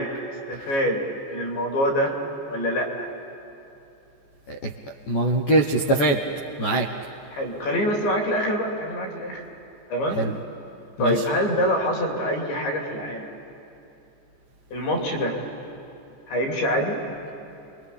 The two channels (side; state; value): right; late; 14 ms